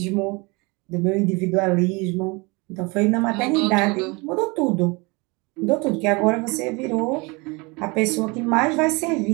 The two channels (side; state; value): left; quieter; 27.1 dB